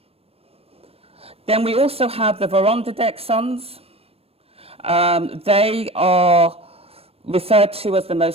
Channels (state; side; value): late; left; 0.28 ms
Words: Then we also have the Vorondadek sons. They are referred to as the